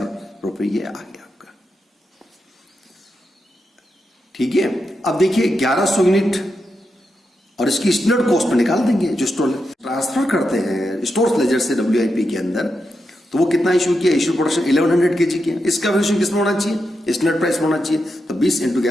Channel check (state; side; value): normal; both; correlation 0.86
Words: रुपए ये आ गया आपका। ठीक है, अब देखिए 1100 यूनिट और इसकी स्टैंडर्ड कॉस्ट में निकाल देंगे, जो स्टोर ट्रांसफर करते हैं स्टोर्स लेजर से WIP के अंदर, तो वो कितना इशू किया, इशू प्रोडक्शन 1100 kg किया, इसका वैल्यूएशन किसमें होना चाहिए, स्टैंडर्ड प्राइस होना चाहिए, तो 20 इंटू